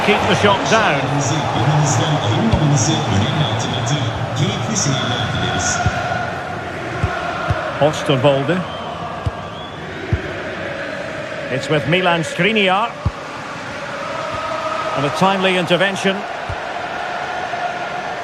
keep the shot down. Osterwolde. It's with Milan Skriniar. And a timely intervention.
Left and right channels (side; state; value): both; identical; correlation 1.00